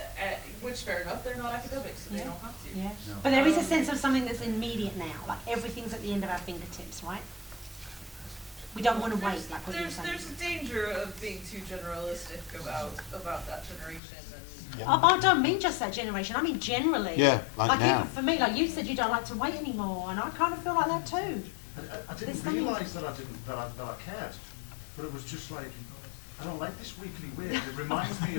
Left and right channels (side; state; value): right; drops out; at 14.0 s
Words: Which fair enough, they're not academics, so they don't have to. Yeah. But there is a sense of something that's immediate now. Like everything's at the end of our fingertips, right? We don't want to wait, like what you're saying. There's a danger of being too generalistic about that generation and I don't mean just that generation. I mean generally. Yeah, like now. For me, like you said, you don't like to wait anymore, and I kind of feel like that too. I didn't realise that I cared, but it was just like, I don't like this weekly weird. It reminds me